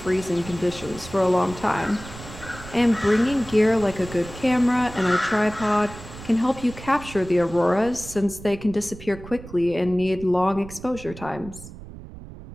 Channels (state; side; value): noise; right; rumble, 15 dB below the sound